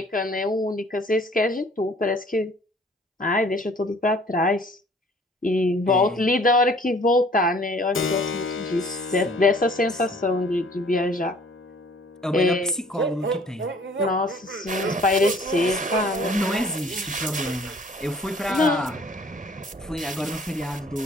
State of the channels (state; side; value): normal; both; correlation 0.54